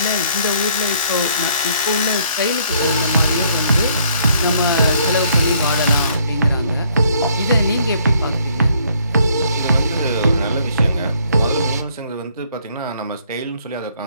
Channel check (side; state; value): both; inverted; correlation -0.65